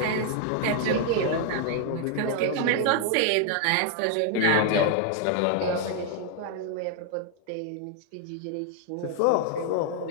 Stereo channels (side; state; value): both; different; correlation 0.00